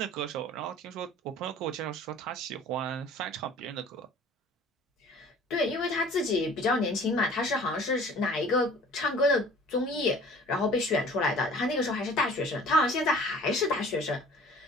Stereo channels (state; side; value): normal; both; correlation 0.48